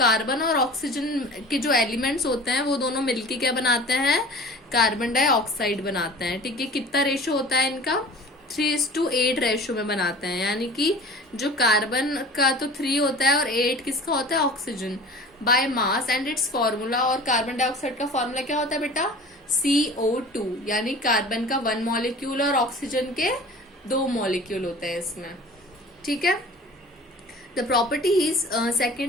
और ऑक्सीजन के जो एलिमेंट्स होते हैं वो दोनों मिलके क्या बनाते हैं, कार्बन डाइऑक्साइड बनाते हैं। ठीक है, कितना रेशो होता है इनका, 3:8 रेशो में बनाते हैं, यानी कि जो कार्बन का तो 3 होता है और 8 किसका होता है, oxygen, by mass and it's formula. और कार्बन डाइऑक्साइड का फॉर्मूला क्या होता है बेटा, CO2, यानी कार्बन का 1 मॉलिक्यूल और ऑक्सीजन के 2 मॉलिक्यूल होते हैं इसमें। ठीक है, the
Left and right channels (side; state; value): both; normal; correlation 0.41